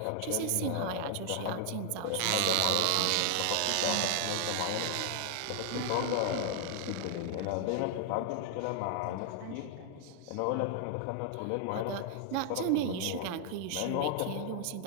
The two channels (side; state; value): both; different; correlation 0.00